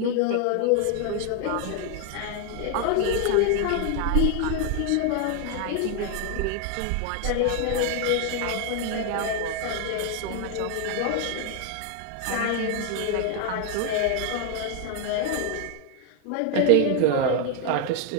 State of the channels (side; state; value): both; different; correlation 0.01